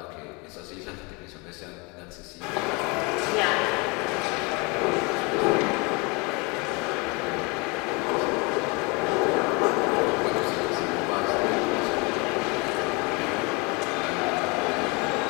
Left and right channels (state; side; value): quieter; right; 28.8 dB